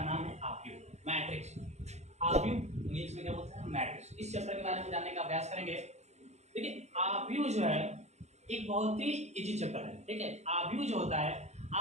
नाम है आव्यूह मैट्रिक्स। आव्यूह इंग्लिश में क्या बोलते हैं? मैट्रिक्स। इस चैप्टर के बारे में जानने का अभ्यास करेंगे। देखिए, आव्यूह जो है एक बहुत ही इजी चैप्टर है। ठीक है, आव्यूह जो होता है,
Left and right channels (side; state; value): left; late; 0.32 ms